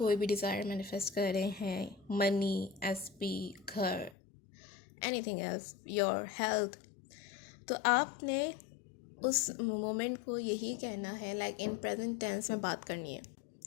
भी डिज़ायर मैनिफेस्ट कर रहे हैं, मनी, एसपी, घर, एनीथिंग एल्स, योर हेल्थ, तो आपने उस मोमेंट को यही कहना है, लाइक इन प्रेजेंट टेंस में बात करनी है.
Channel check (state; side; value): drops out; right; at 4.2 s